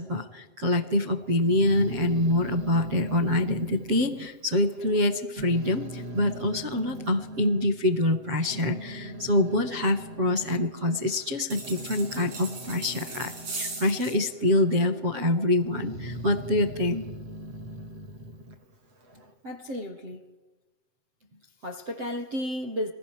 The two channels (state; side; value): late; left; 7.8 ms